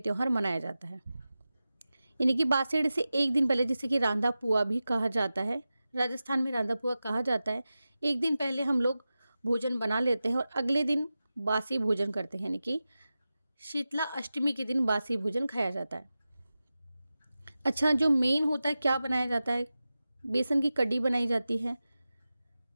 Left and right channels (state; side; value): inverted; both; correlation -0.94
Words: मनाया जाता है, यानी कि बासुड़े से एक दिन पहले, जिसे कि रांधा पुआ भी कहा जाता है। राजस्थान में रांधा पुआ कहा जाता है। एक दिन पहले हम लोग भोजन बना लेते हैं और अगले दिन बासी भोजन करते हैं, यानी कि शीतला अष्टमी के दिन बासी भोजन खाया जाता है। अच्छा, जो मेन होता है, क्या बनाया जाता है? बेसन की कड्डी बनाई जाती है,